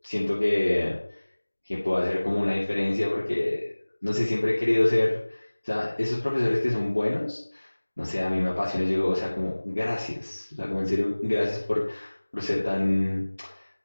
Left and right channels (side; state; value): both; inverted; correlation -1.00